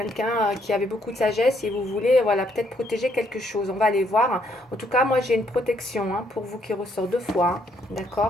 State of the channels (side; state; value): both; normal; correlation 0.71